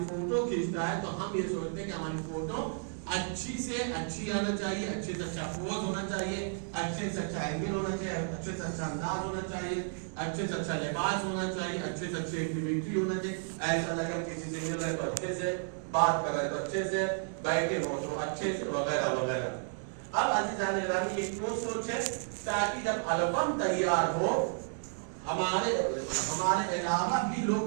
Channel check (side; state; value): left; silent; digital silence